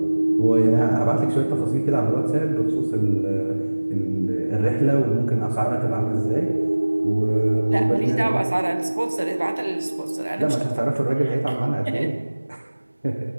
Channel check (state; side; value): inverted; both; correlation -1.00